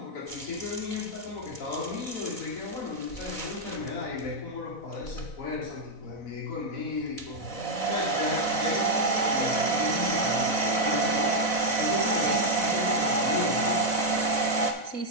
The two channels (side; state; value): right; late; 4.0 ms